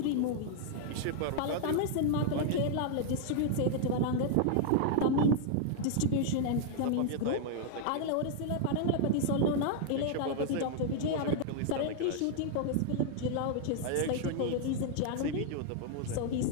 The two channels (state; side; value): different; both; correlation 0.00